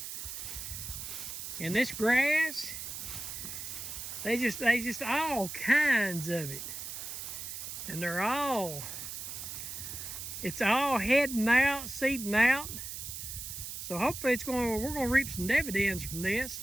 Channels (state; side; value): noise; right; hiss, 7 dB below the sound